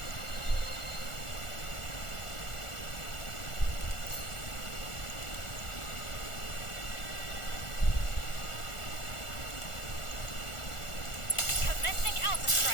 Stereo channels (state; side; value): late; right; 1.4 ms